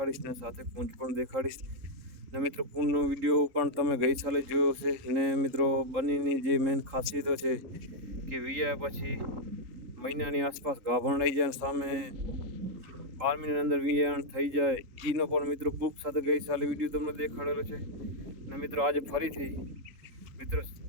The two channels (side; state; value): left; late; 3.8 ms